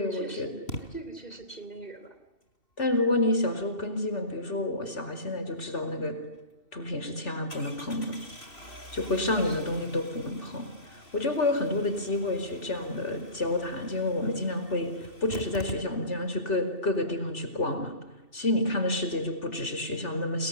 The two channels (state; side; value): late; right; 2.7 ms